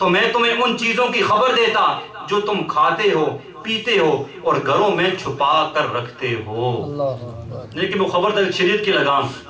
میں تمہیں ان چیزوں کی خبر دیتا جو تم کھاتے ہو، پیتے ہو اور گھروں میں چھپا کر رکھتے ہو۔ لیکن وہ خبر تک شریعت کی لگام،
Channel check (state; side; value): identical; both; correlation 1.00